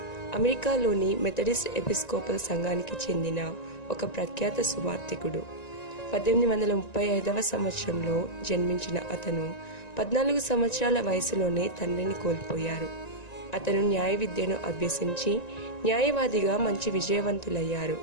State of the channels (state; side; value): late; right; 1.9 ms